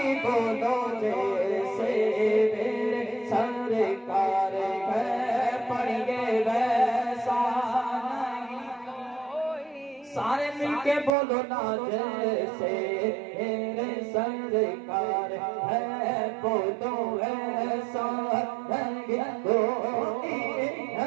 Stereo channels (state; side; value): drops out; left; at 11.1 s